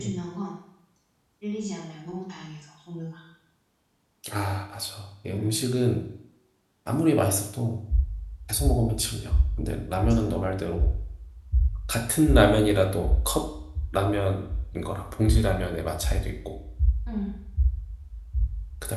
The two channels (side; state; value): both; identical; correlation 1.00